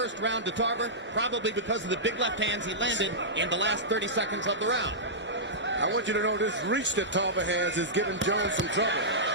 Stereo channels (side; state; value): both; normal; correlation -0.14